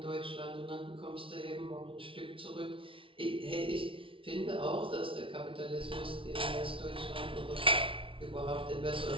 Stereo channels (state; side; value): late; left; 0.25 ms